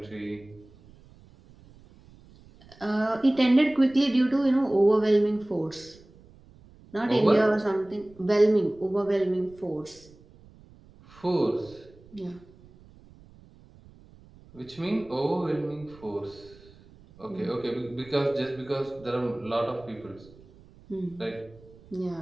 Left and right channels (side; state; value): right; noise; rumble, 24 dB below the sound